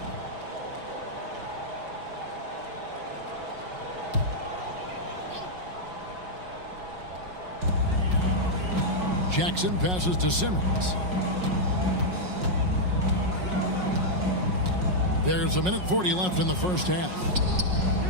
Jackson passes to Simmons. There's 1:40 left in the first half.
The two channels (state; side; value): late; left; 5.5 ms